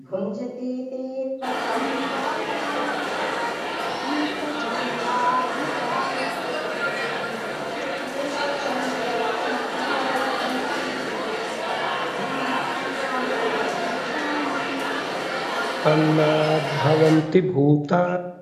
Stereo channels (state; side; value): identical; both; correlation 1.00